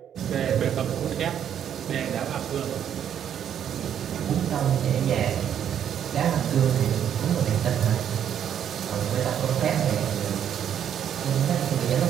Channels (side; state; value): left; quieter; 9.3 dB